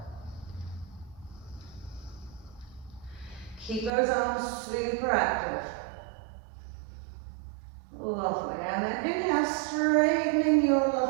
Keep those arms super active. Lovely. And then inhale, straightening your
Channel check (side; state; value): left; drops out; at 3.9 s